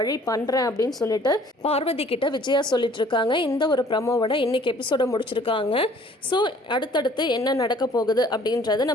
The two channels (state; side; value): normal; both; correlation 0.55